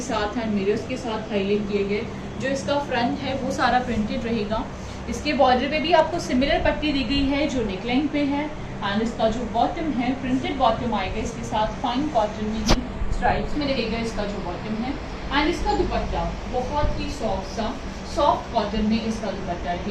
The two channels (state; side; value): identical; both; correlation 1.00